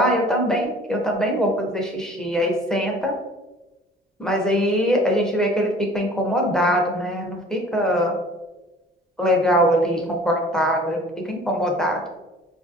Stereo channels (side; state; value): both; normal; correlation 0.48